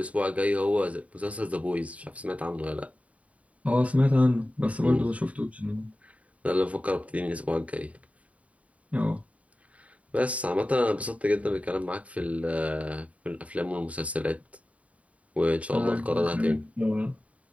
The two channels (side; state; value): left; late; 0.067 ms